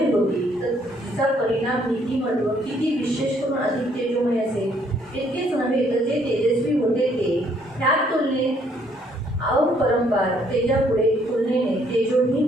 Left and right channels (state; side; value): normal; both; correlation 0.67